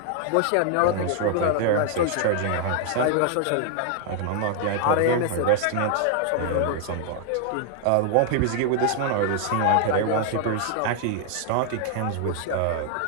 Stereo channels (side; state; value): both; different; correlation 0.00